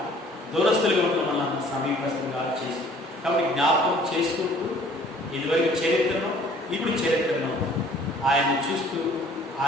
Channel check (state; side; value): normal; both; correlation 0.54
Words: దూరస్తులుగా ఉన్న మనల్ని సమీపస్తులుగా చేసి. కాబట్టి జ్ఞాపకం చేసుకుంటూ ఇదివరకు చరిత్రను, ఇప్పుడు చరిత్రను ఆయన చూస్తూ,